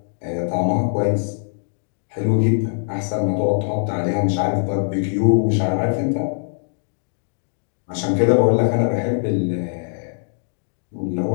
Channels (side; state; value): right; silent; digital silence